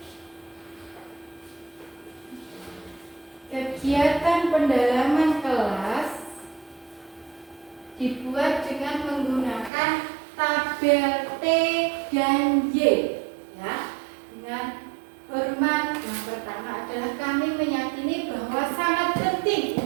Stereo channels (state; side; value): drops out; left; at 9.7 s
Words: Kegiatan pendalaman kelas dibuat dengan menggunakan tabel T dan Y, ya. Dengan hormat, yang pertama adalah kami meyakini bahwa sangat penting